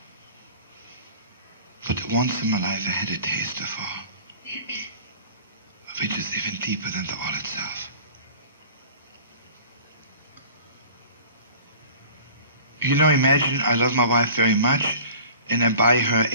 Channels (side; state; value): both; inverted; correlation -0.44